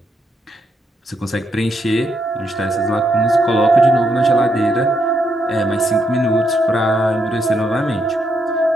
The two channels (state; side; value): normal; both; correlation 0.77